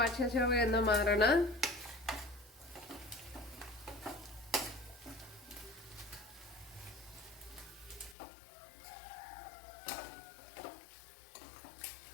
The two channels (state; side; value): drops out; right; at 8.2 s